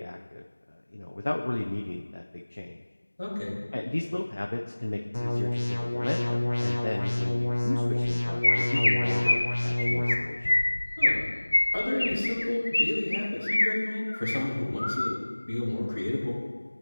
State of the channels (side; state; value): both; inverted; correlation -1.00